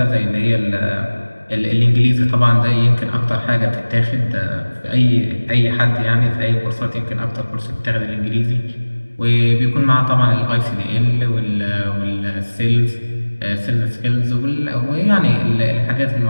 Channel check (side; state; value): both; inverted; correlation -1.00